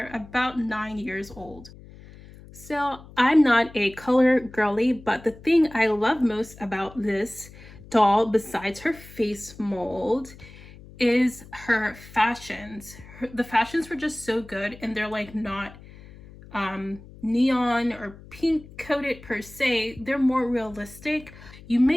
about 9 years old. So I'm not a color girly, but the thing I love most about this doll, besides her face mold, is her fashions. The fashions were just so good, and they're like not neon or pink coated per se. They're more realistic. You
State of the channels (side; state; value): left; noise; hum, 19 dB below the sound